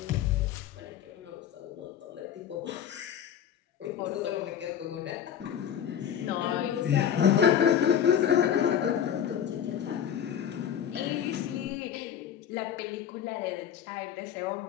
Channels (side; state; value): right; quieter; 9.2 dB